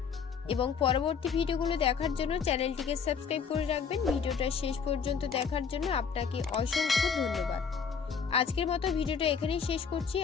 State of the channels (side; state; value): right; quieter; 6.3 dB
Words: এবং পরবর্তী ভিডিওগুলো দেখার জন্য চ্যানেলটিকে সাবস্ক্রাইব করে রাখবেন। ভিডিওটা শেষ পর্যন্ত দেখার জন্য আপনাকে অসংখ্য ধন্যবাদ। আজকের মতো ভিডিওটা এখানেই শেষ করছি।